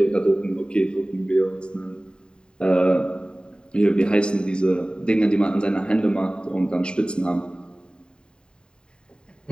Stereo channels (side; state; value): right; late; 0.049 ms